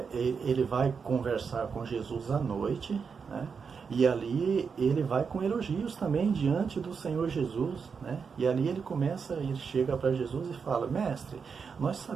ele vai conversar com Jesus à noite, né? E ali ele vai com elogios também diante do Senhor Jesus, né? E ali ele chega para Jesus e fala, mestre, nós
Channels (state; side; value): quieter; left; 5.8 dB